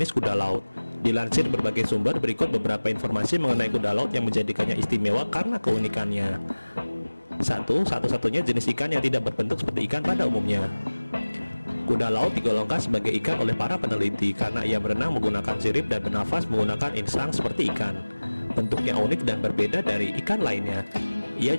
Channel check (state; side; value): inverted; both; correlation -1.00